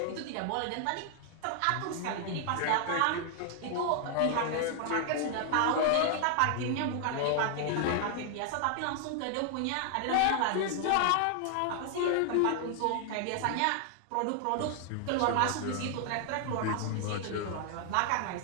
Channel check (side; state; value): both; different; correlation 0.00